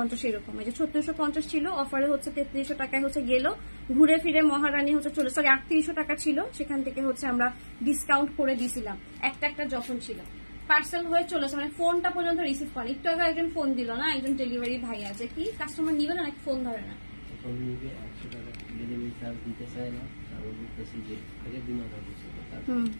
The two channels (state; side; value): inverted; both; correlation -1.00